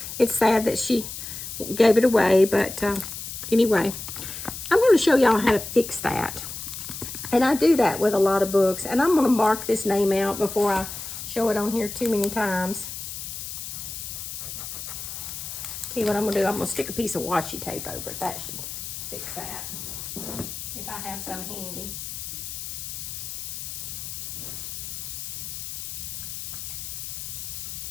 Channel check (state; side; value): noise; left; hiss, 8 dB below the sound